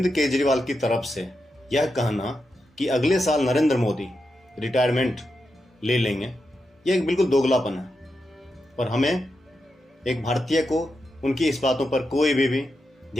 केजरीवाल की तरफ से यह कहना कि अगले साल नरेंद्र मोदी रिटायरमेंट ले लेंगे, यह एक बिल्कुल दोगलापन है। और हमें एक भारतीय को उनकी इस बातों पर कोई भी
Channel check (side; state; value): both; normal; correlation 0.87